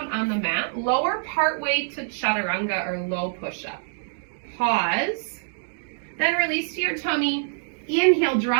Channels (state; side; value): silent; left; digital silence